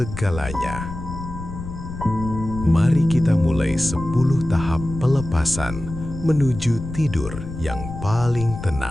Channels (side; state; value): left; noise; rumble, 9 dB below the sound